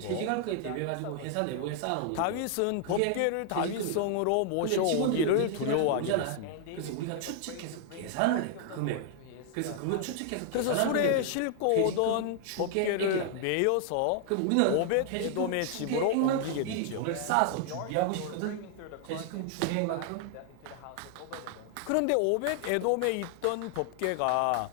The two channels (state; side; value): different; both; correlation 0.00